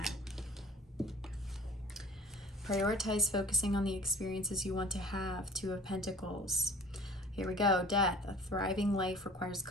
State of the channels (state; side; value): normal; both; correlation 0.46